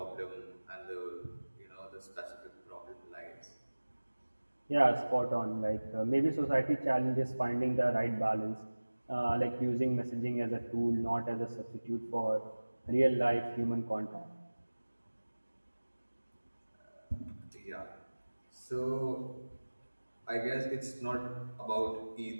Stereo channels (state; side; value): inverted; both; correlation -1.00